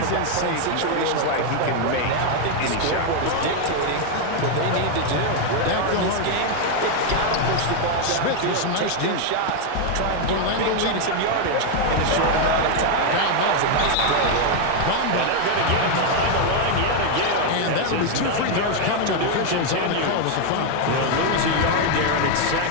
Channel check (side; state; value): both; different; correlation 0.01